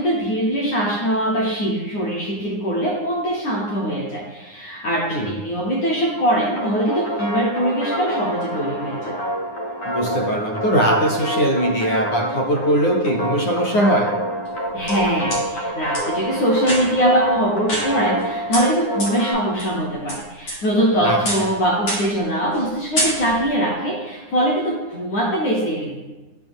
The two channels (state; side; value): late; right; 9.7 ms